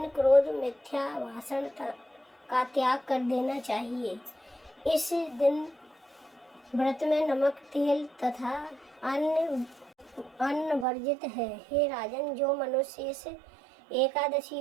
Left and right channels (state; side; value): drops out; left; at 10.9 s